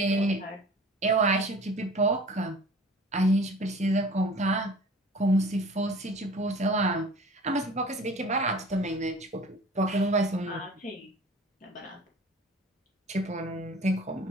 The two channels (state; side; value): normal; both; correlation 0.44